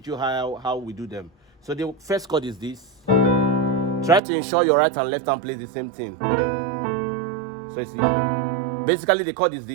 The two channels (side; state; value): left; drops out; at 4.2 s